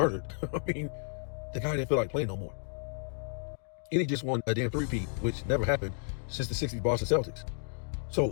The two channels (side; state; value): right; silent; digital silence